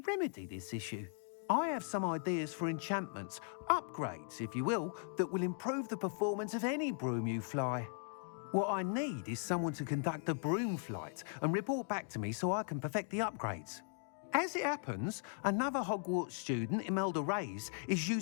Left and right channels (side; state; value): right; silent; 52 dB below the other